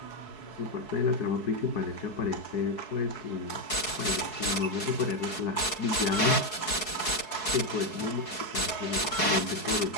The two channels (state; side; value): late; right; 4.7 ms